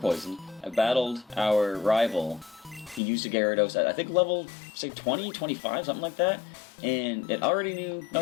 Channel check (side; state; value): right; drops out; at 3.0 s